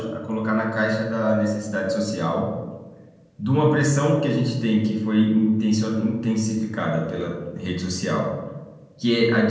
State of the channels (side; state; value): both; identical; correlation 1.00